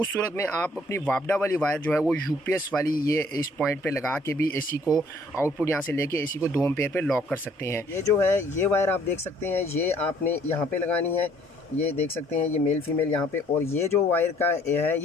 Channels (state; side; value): normal; both; correlation 0.61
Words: सूरत में आप अपनी वापडा वाली वायर जो है वो यूपीएस वाली ये इस पॉइंट पे लगा के भी एसी को आउटपुट यहाँ से लेके एसी को 2 एम्पेयर पे लॉक कर सकते हैं। ये जो है ये वायर आप देख सकते हैं, ये आपने यहाँ पे लगानी है। ये देख सकते हैं ये मेल फीमेल यहाँ पे। और ये जो वायर का है